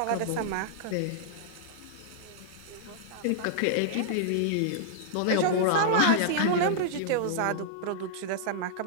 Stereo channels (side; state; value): both; different; correlation -0.02